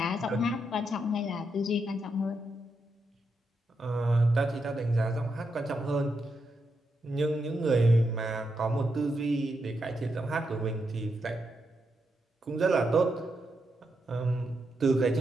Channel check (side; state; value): both; normal; correlation 0.83